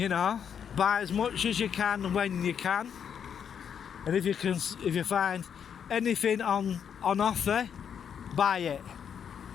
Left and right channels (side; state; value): right; quieter; 7.9 dB